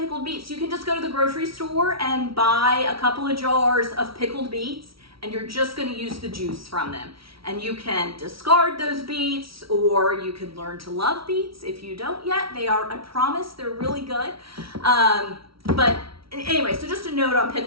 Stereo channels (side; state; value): left; late; 0.75 ms